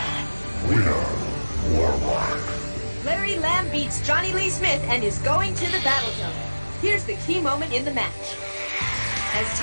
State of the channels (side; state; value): both; inverted; correlation -1.00